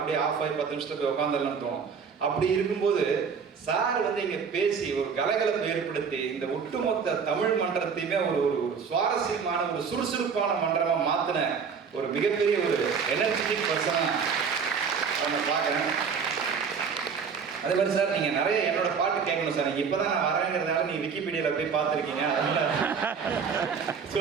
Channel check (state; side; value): quieter; left; 6.1 dB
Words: ஆஃப் ஆகி 10 நிமிஷத்துல போய் உட்காந்துடலாம்னு தோணும். அப்படி இருக்கும்போது சார் வந்து இங்க பேசி ஒரு கலகலப்பை ஏற்படுத்தி இந்த ஒட்டுமொத்த தமிழ் மன்றத்தையுமே ஒரு சுவாரஸ்யமான ஒரு சுறுசுறுப்பான மன்றமா மாத்தின ஒரு மிகப்பெரிய ஒரு எனர்ஜெட்டிக் பர்சனா அவங்க பார்க்குறேன். அதே மாதிரி சார் நீங்க நிறைய என்னோட பாட்டு கேட்கணும் சார். நீங்க இப்பதான் நான் வரேங்கிறதுனால நீங்க விக்கிபீடியால போய் பார்த்துருக்கீங்க. அதனால ஸோ